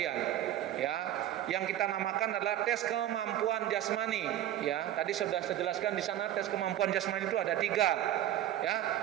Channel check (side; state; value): left; quieter; 12.3 dB